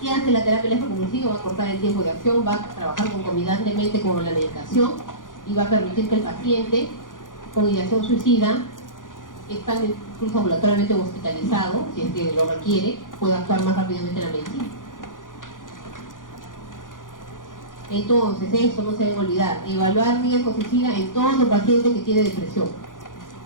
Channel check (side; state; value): right; late; 0.88 ms